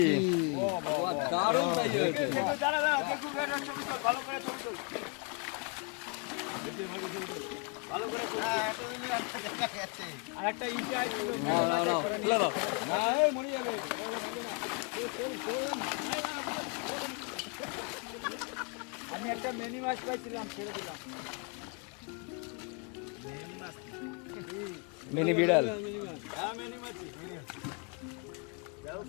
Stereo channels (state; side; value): quieter; right; 34.5 dB